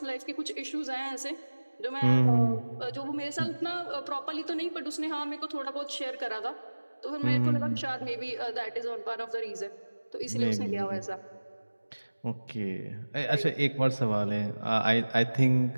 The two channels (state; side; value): inverted; both; correlation -1.00